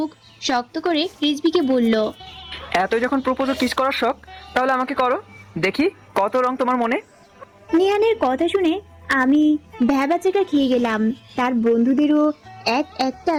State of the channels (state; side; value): identical; both; correlation 1.00